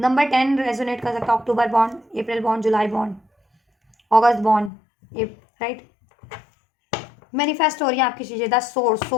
10 रेजोनेट कर सकता है, अक्टूबर बॉन्ड, अप्रैल बॉन्ड, जुलाई बॉन्ड, अगस्त बॉन्ड, राइट। मैनिफेस्ट हो रही है आपकी चीज़ें, द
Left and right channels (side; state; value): right; drops out; at 4.7 s